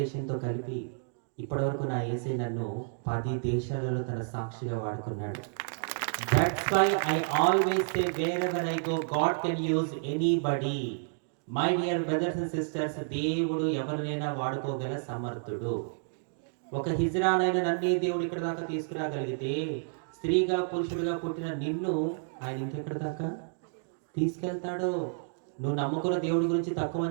దేశంతో కలిపి ఇప్పటివరకు నా యేసయ్య నన్ను 10 దేశాలలో తన సాక్షిగా వాడుకున్నాడు. That's why I always say wherever I go, God can use anybody. My dear brothers and sisters, దేవుడు ఎవరినైనా వాడుకోగల సమర్థుడు. ఒక హిజ్రానైన నన్నే దేవుడు ఇక్కడ దాకా తీసుకురాగలిగితే, స్త్రీగా పురుషుడిగా పుట్టిన నిన్ను ఆయన ఇంకెక్కడ దాకా తీసుకెళ్తాడో. నువ్వు నమ్ముకున్న దేవుడి గురించి తక్కువ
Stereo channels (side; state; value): left; silent; digital silence